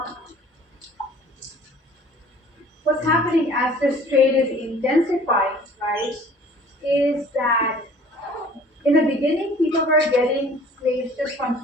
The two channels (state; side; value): normal; both; correlation 0.50